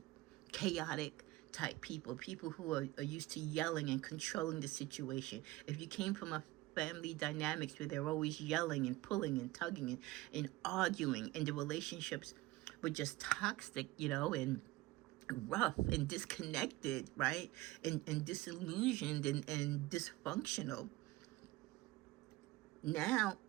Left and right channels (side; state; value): left; quieter; 19.0 dB